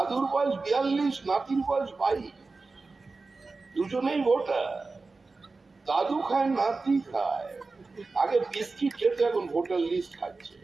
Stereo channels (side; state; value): left; quieter; 3.8 dB